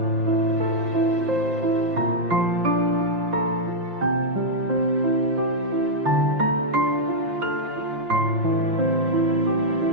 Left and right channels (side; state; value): left; late; 5.7 ms